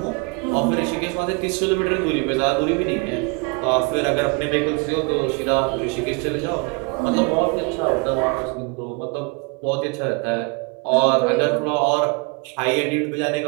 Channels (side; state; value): left; quieter; 31.2 dB